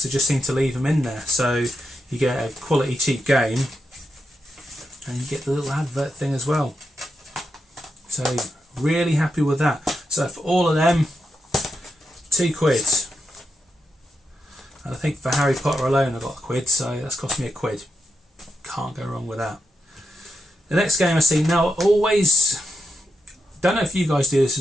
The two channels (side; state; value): both; normal; correlation 0.86